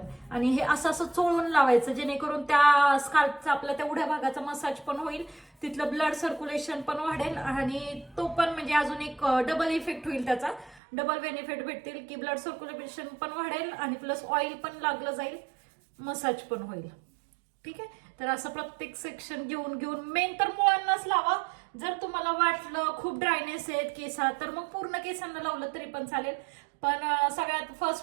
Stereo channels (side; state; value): left; drops out; at 10.8 s